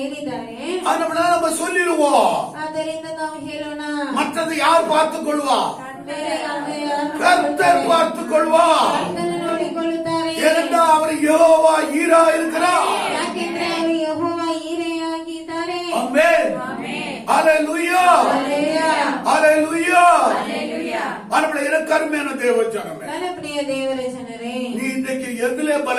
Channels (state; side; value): identical; both; correlation 1.00